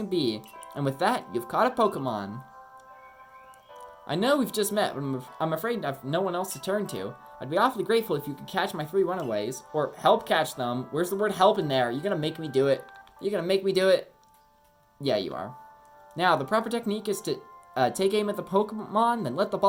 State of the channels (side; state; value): both; identical; correlation 1.00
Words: be. And with that, you've caught a Pokemon. I know we've just met, but I'm afraid I have no one else to turn to. I'd be awfully grateful if you could catch my 3 runaways, or help catch them. Where's the word help in there? You're gonna make me do it. You're gonna make me do it. Yeah, you are. Now, the proper technique is to take aim at the Pokemon, then let the